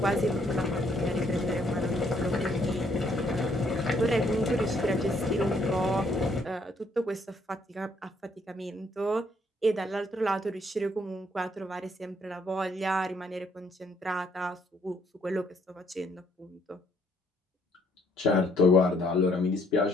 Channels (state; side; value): normal; both; correlation 0.68